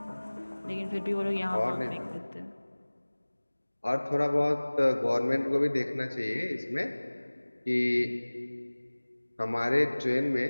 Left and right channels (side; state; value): both; inverted; correlation -1.00